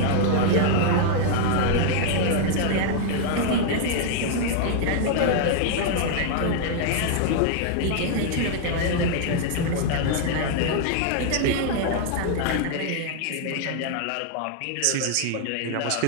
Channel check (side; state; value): both; different; correlation 0.00